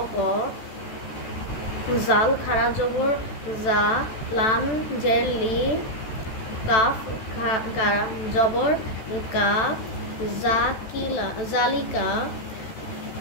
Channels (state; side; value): late; right; 14 ms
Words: গ। জাল খাড়া জবর জা, লাম জের লি। কাফ জবর কা, জালিকা।